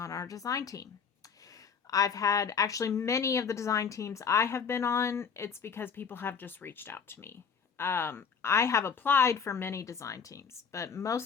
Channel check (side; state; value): right; quieter; 6.3 dB